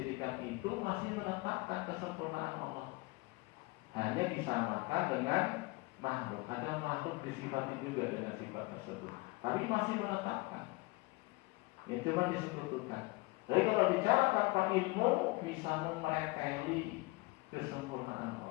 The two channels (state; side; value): quieter; right; 24.3 dB